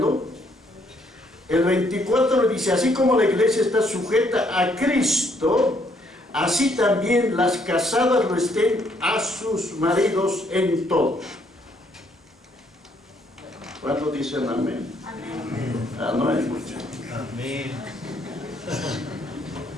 El 24 dice: así como la iglesia está sujeta a Cristo, así también las casadas lo estén a sus maridos en todo. ¿Cuántos dicen amén? Amén. No es mucho. Amén.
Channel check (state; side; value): normal; both; correlation 0.69